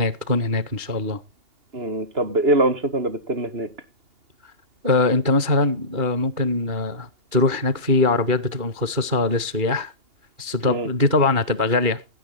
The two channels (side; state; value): left; late; 2.8 ms